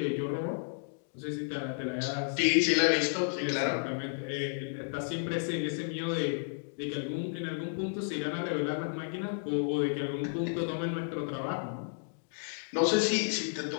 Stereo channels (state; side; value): silent; right; digital silence